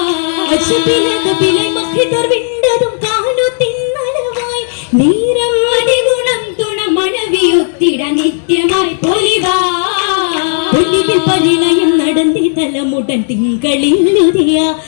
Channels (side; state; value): right; silent; digital silence